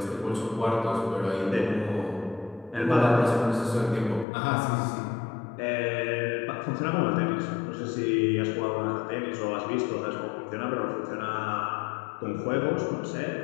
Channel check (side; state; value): right; drops out; at 4.2 s